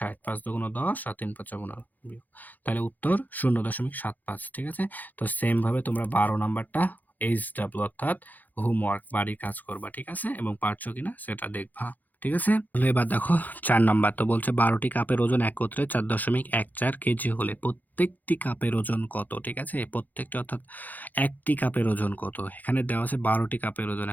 5 দুগুণ 10, আর 3 5 15, তাহলে উত্তর 0.75, ঠিক আছে। তো সেম ভাবে তোমরা 12 নাম্বারটা HW অর্থাৎ হোমওয়ার্ক বাড়ির কাজ করবা, ঠিক আছে, এবং পারছো কিনা সেটা দেখবা, ঠিক আছে। তাহলে এবার দেখো 4 নাম্বার, তো বলছে 12টি কাপের ওজন একত্রে 4.14 কেজি হলে প্রত্যেকটি কাপের ওজন কত, ঠিক আছে। প্রত্যেকটি অর্থাৎ একটি কাপের ওজন কত, এখানে দেওয়া আছে 12টি কাপের ওজন,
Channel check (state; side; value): late; right; 0.083 ms